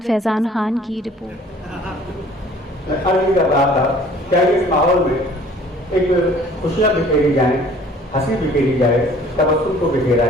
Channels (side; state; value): both; normal; correlation 0.52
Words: Faizan Khan की रिपोर्ट। अर्ज कर रहा था क्या इस माहौल में एक खुशियाँ बिखेरी जाए, हंसी बिखेरी जाए, तबस्सुम को बिखेरा